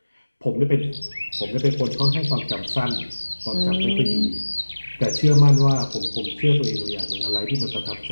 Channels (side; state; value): both; inverted; correlation -1.00